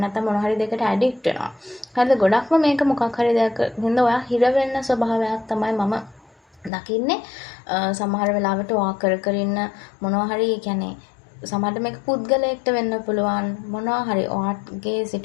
නැත්නම් මොනවා හරි දෙයකට ඇඩික්ට් වෙනවා. හරිද? ගොඩක්ම මේක මොකක් හරි දෙයක් හින්දා ඔයා හිර වෙන්න ස්වභාවයක් තමයි මම දකින්නේ. සමහර වෙලාවට ඔයා කර ඉන්න මොනවා හරි කියන්නේ සමහරට මේක පුද්ගලයෙක්ට වෙන්න පුළුවන් මොනවා හරි ඔයාගේ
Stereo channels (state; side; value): drops out; right; at 6.7 s